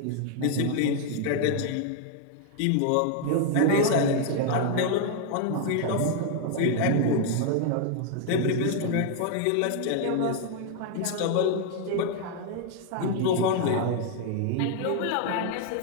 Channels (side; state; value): both; different; correlation 0.00